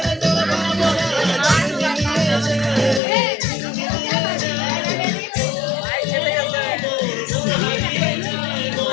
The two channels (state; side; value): drops out; right; at 3.0 s